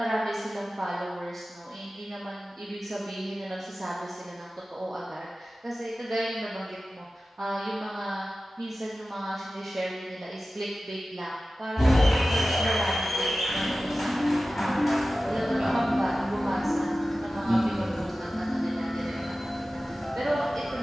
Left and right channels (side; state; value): both; normal; correlation 0.95